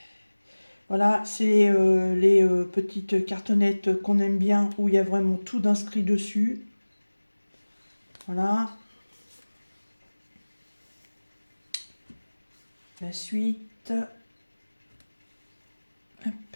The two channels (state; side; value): inverted; both; correlation -1.00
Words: Voilà, c'est les petites cartonnettes qu'on aime bien, où il y a vraiment tout d'inscrit dessus. Voilà. La suite. Hop.